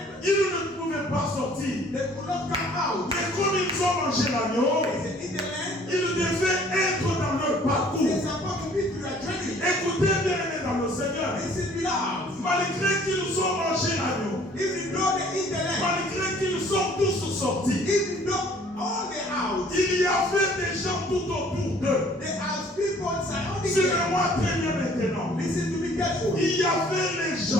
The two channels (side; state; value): both; normal; correlation 0.56